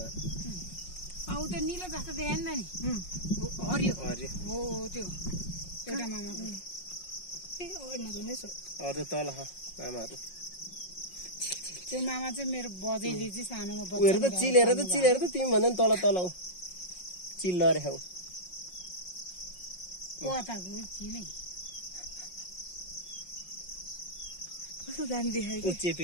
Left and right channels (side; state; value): right; late; 5.5 ms